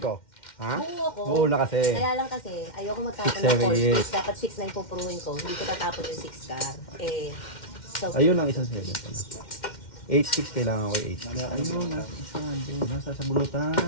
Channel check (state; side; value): late; right; 2.1 ms